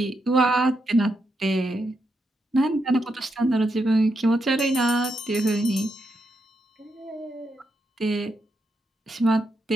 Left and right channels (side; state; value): both; normal; correlation 0.82